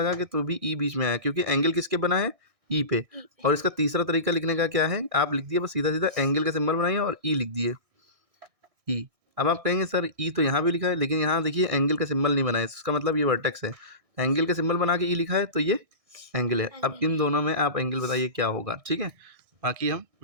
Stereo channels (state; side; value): late; left; 1.6 ms